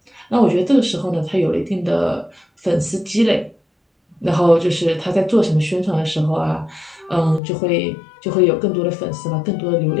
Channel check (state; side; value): drops out; right; at 7.4 s